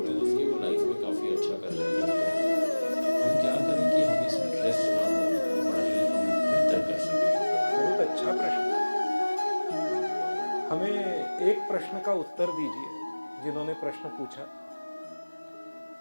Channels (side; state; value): both; inverted; correlation -1.00